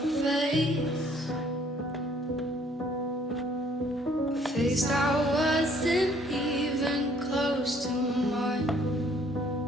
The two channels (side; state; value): both; normal; correlation 0.61